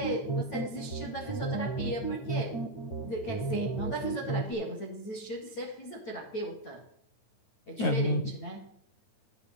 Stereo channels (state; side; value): late; right; 9.0 ms